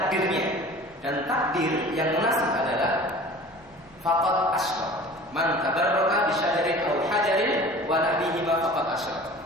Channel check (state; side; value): noise; left; rumble, 29 dB below the sound